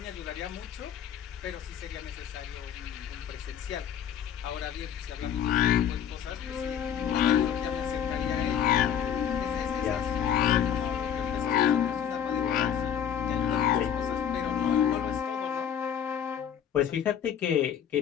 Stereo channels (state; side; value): quieter; right; 9.1 dB